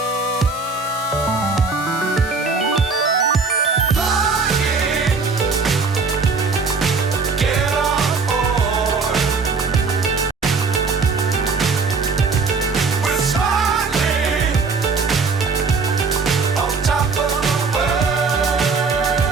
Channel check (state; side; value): quieter; left; 4.5 dB